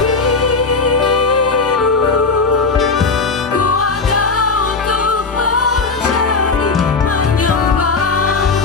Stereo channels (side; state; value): right; quieter; 4.3 dB